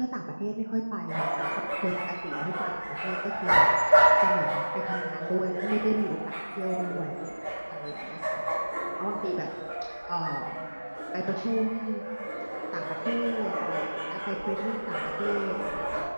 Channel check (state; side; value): inverted; both; correlation -1.00